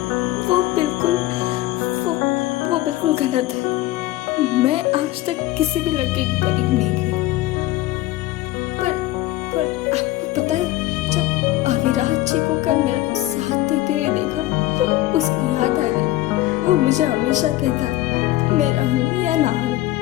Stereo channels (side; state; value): right; quieter; 16.3 dB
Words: वो बिल्कुल गलत है। मैं आज तक किसी भी लड़के के करीब नहीं गई, पर आपको विराट जी को कल मेरा साथ देते हुए देखा तो उसकी याद आ गई। वो मुझे हमेशा कहता, मैं रहूं या ना